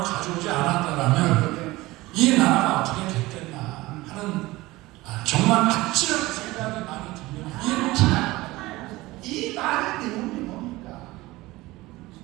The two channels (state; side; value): quieter; left; 19.5 dB